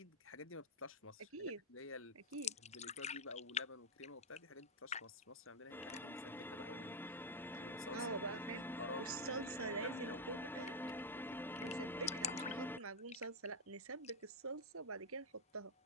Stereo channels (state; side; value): normal; both; correlation 0.02